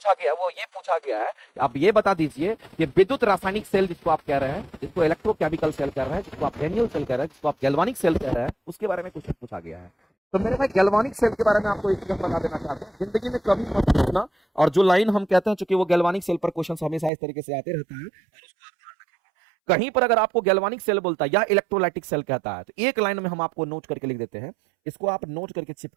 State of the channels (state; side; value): drops out; left; at 17.1 s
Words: गया वो ये पूछा गया है, आप ये बता दीजिए कि विद्युत रासायनिक सेल जिसको आप कह रहे हैं, जिसको इलेक्ट्रोकेमिकल सेल कह रहे हैं, जिसको आप डेनियल सेल कह रहे हैं, जिसको आप गैल्वानिक सेल कह रहे हैं, उसके बारे में क्वेश्चन पूछा गया है। तो मेरे भाई गैल्वानिक सेल के बारे में आपको एक चीज बता देना चाहते हैं, जिंदगी में कभी मत भूलना, और जो लाइन हम कहते हैं, चूंकि वो गैल्वानिक सेल पर क्वेश्चन हमेशा इस तरीके से आते रहता है, कहीं पर अगर आपको गैल्वानिक सेल बोलता है या इलेक्ट्रोलाइटिक सेल कहता है, तो एक लाइन में हम आपको नोट करके लिख देते हैं, इसको आप नोट करके